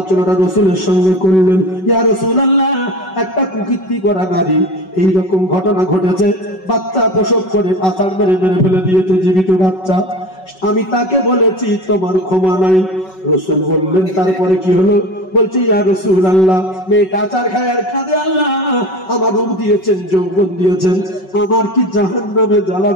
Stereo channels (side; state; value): right; late; 5.3 ms